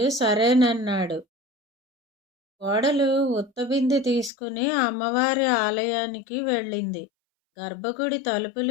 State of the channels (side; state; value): right; drops out; at 4.3 s